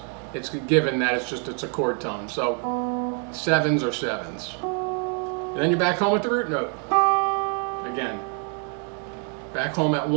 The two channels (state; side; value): quieter; left; 39.0 dB